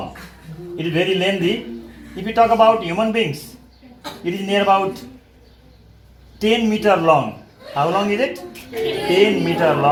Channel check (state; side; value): identical; both; correlation 1.00